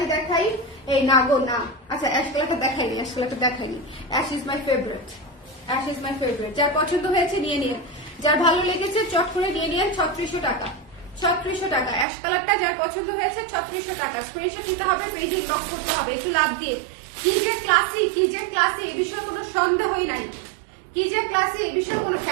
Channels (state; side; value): drops out; left; at 12.1 s